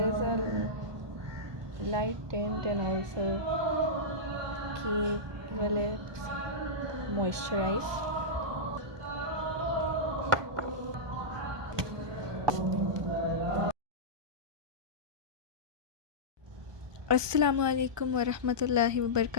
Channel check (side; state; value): left; late; 1.2 ms